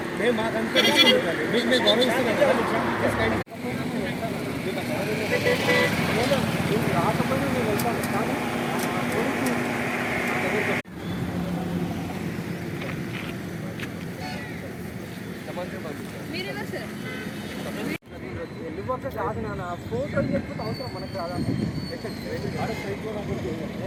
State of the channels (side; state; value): both; identical; correlation 1.00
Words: మేము మాకంతా మీకు మేము గౌరవిస్తున్నాం. రాకపోయినా నేను వెళ్తాను కానీ వెళ్ళిపోతే కాదు నాన్న ఫోటో చెప్పితే అవసరం మనకు రాదా